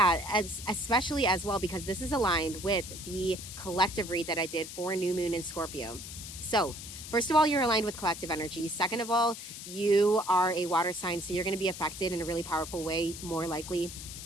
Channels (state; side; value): noise; left; hiss, 11 dB below the sound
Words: especially as well, because this is aligned with the collective read that I did for new moon in Scorpio. So first of all, you're aligned with collective energy. Second of all, you are a water sign, so you're going to be affected in a really powerful way, more likely